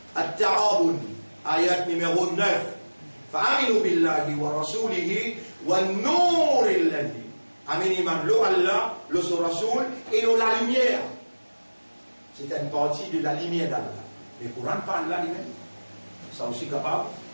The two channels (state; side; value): inverted; both; correlation -1.00